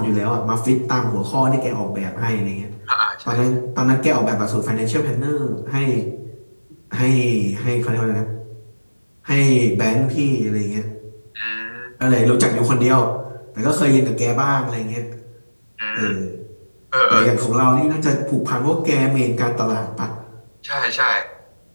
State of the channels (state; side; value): inverted; both; correlation -1.00